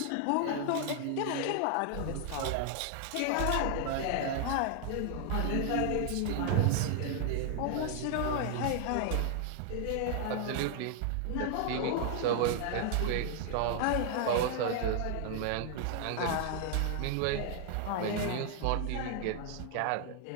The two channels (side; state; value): both; different; correlation 0.00